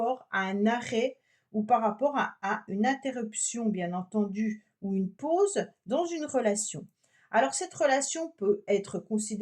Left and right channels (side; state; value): both; identical; correlation 1.00